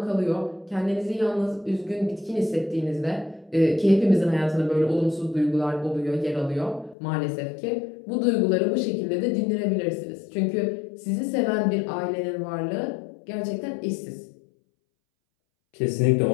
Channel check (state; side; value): drops out; right; at 7.0 s